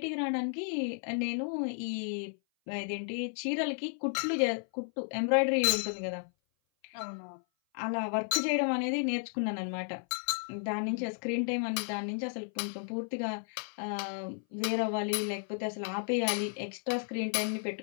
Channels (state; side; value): silent; right; 56 dB below the other